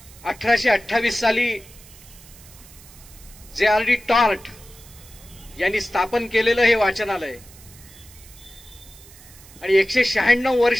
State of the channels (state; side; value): noise; right; hiss, 21 dB below the sound